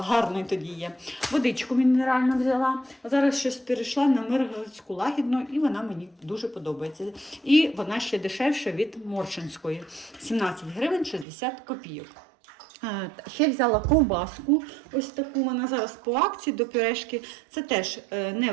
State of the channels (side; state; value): left; drops out; at 11.2 s